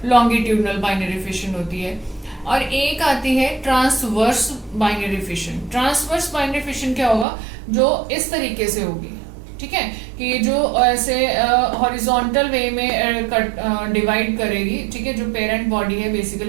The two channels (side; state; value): left; drops out; at 7.2 s